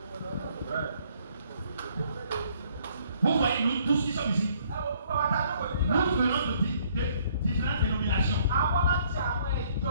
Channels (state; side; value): inverted; both; correlation -0.64